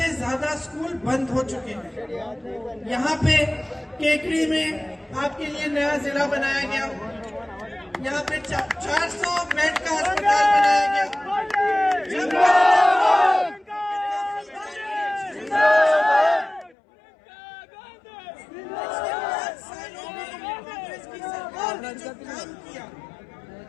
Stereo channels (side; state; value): right; drops out; at 16.8 s